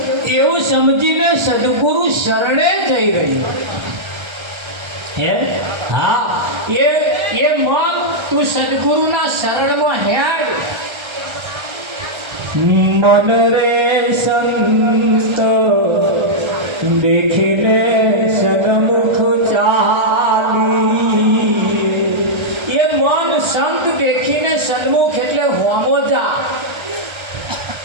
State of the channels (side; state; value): left; late; 1.3 ms